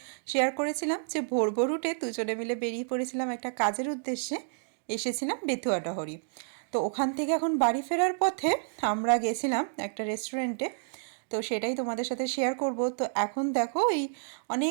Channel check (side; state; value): left; silent; digital silence